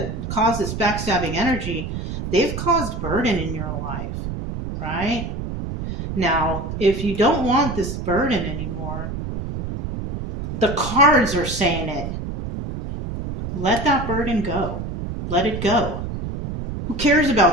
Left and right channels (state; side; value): noise; right; rumble, 6 dB below the sound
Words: caused this backstabbing energy, they've caused burden in your life, right? Now, if you don't want this burden anymore, the cards are saying it. Let that burden go. Let it go. Who cares